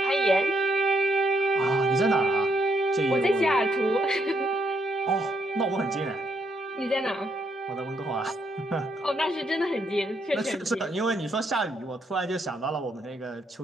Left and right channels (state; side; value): normal; both; correlation 0.75